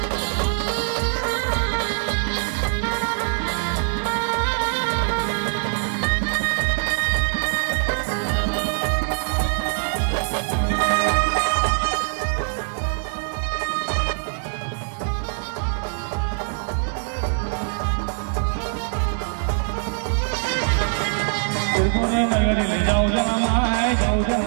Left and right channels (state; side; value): silent; left; 63 dB below the other